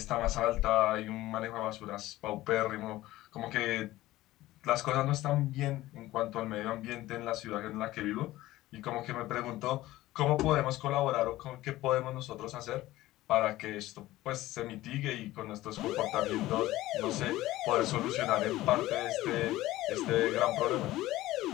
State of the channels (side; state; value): right; quieter; 16.6 dB